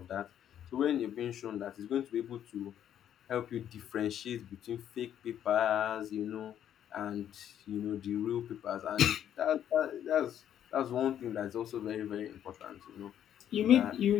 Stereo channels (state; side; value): quieter; right; 10.2 dB